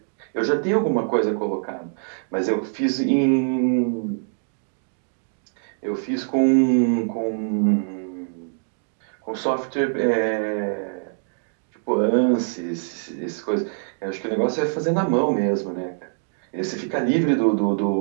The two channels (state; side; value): silent; left; digital silence